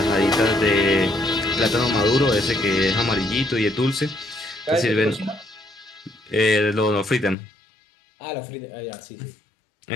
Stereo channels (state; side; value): drops out; right; at 7.4 s